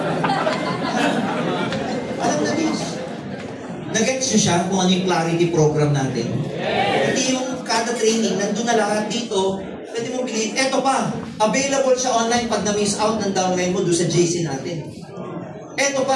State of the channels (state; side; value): identical; both; correlation 1.00